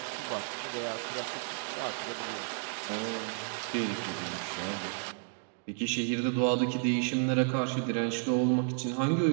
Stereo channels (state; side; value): silent; left; 56 dB below the other